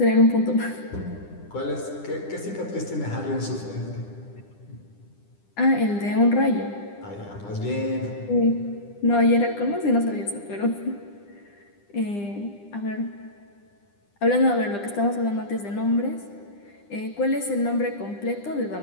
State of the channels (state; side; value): late; right; 9.9 ms